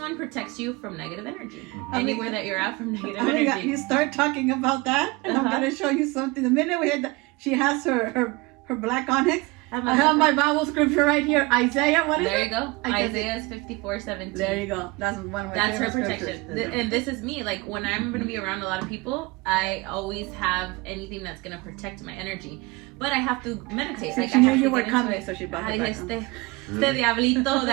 protects you from negative energy. Anywhere that you're at from negative energy. You start talking about that, and I'm going to show you something. The minute we had she has her black onyx, I have my Bible scripture right here. Isaiah, what is it? There you go. Isaiah is 54:17. There you go. That's one of my That's her favorite protection. scriptures. And this is me. Like when I'm going to be around a lot of people, I always have anything that's going to protect my energy. But I have to meditate. So like she I knew have you to were get coming, into it. so she brought it back. Este diablito de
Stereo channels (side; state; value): left; quieter; 23.7 dB